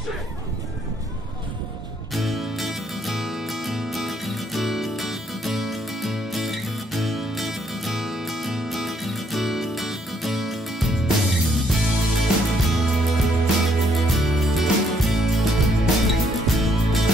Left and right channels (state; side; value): normal; both; correlation 0.70